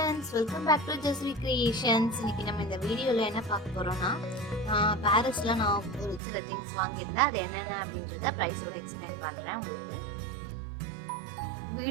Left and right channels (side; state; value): left; drops out; at 6.2 s